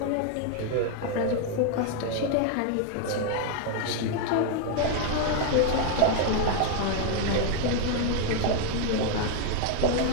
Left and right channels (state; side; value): different; both; correlation 0.00